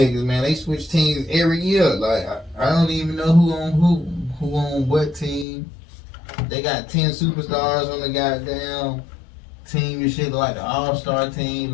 man, they switch teams every year. Like I don't even know who on what team. They got 10 superstars on the goddamn team and shit, like the All-Star team.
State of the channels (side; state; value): right; drops out; at 5.5 s